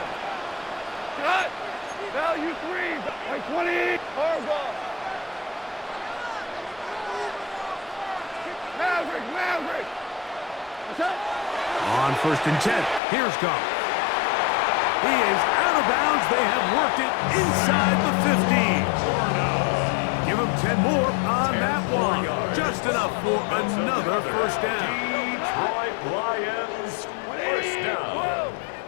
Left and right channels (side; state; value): right; drops out; at 13.0 s